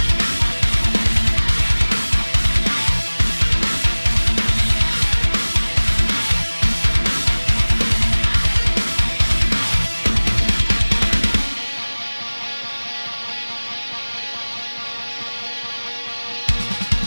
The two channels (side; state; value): both; inverted; correlation -1.00